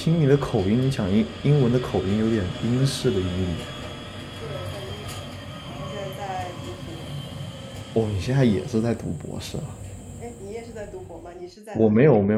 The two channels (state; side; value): identical; both; correlation 1.00